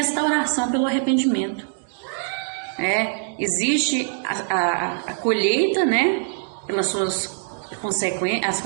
pelo arrependimento. Existe a colheita, né, pelas suas as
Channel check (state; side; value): silent; left; digital silence